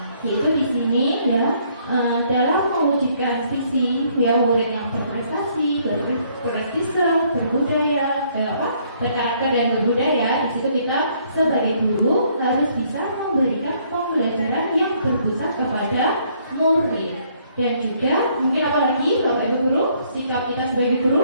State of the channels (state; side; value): inverted; both; correlation -0.66